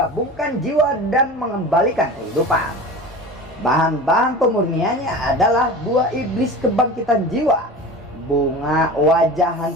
jiwa dan mengembalikan kehidupan. Bahan-bahan pemurniannya adalah buah iblis kebangkitan jiwa, bunga wajah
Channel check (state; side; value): normal; both; correlation 0.34